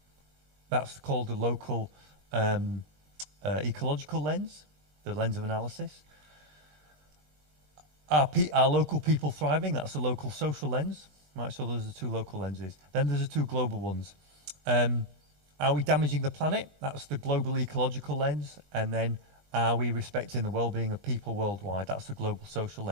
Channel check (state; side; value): late; left; 20 ms